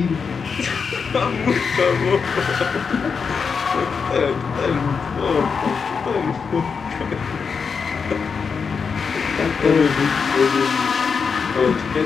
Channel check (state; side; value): quieter; right; 5.7 dB